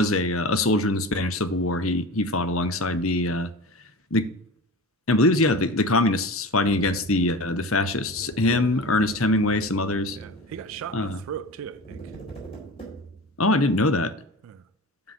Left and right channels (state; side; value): normal; both; correlation 0.32